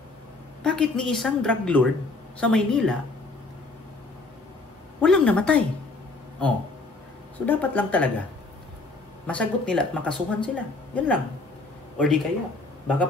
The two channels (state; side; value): quieter; right; 3.4 dB